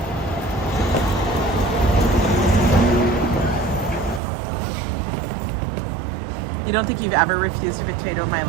You don't think you've ever refused a potato in my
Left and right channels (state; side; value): drops out; left; at 4.2 s